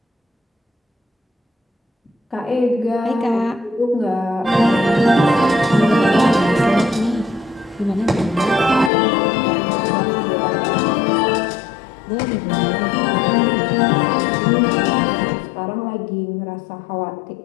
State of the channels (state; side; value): drops out; right; at 8.9 s